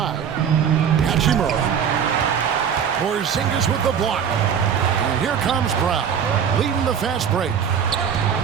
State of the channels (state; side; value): quieter; left; 7.8 dB